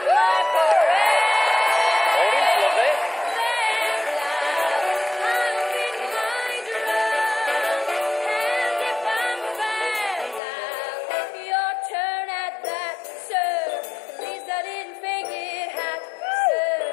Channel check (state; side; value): drops out; right; at 10.4 s